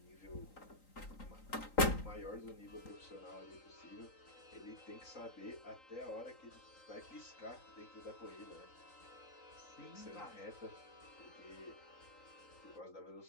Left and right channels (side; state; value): right; late; 3.9 ms